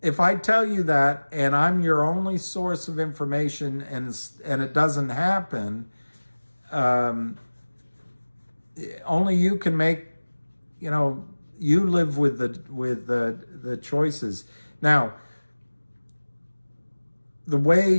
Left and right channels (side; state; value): both; inverted; correlation -1.00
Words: if I tell you that and I'm your only source of information and it doesn't happen, only you can make, you live with the choices. Now, the way